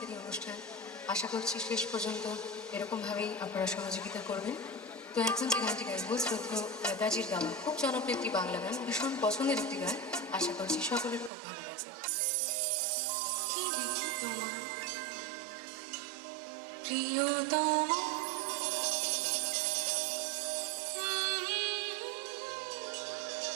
আজকের এই অনুষ্ঠান। আশা করছি শেষ পর্যন্ত এরকমভাবেই আপনারা সহযোগিতা করবেন। তো এখন যে গানটি গাইব শ্রদ্ধেয় নেতাজির গাওয়া খুব জনপ্রিয় একটি বাংলা গান, ভীষণ পছন্দের একটি গান। আশা করছি সকলের খুব ভালো লাগবে। কি দেখি তোমার প্রিয়তম,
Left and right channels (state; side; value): drops out; left; at 11.3 s